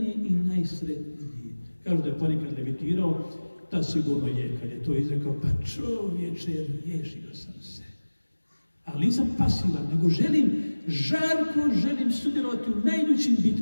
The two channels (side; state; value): both; inverted; correlation -1.00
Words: i najsretniji. Kažu da je ponekad levitirao, ta sigurno je, kad je to izrekao, pa čovječe, riješio sam se. Ali nisam pasivan, nego žarko želim sudjelovati u najljućim